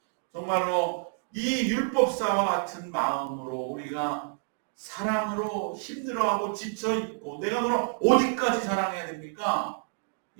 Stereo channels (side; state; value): left; silent; 59 dB below the other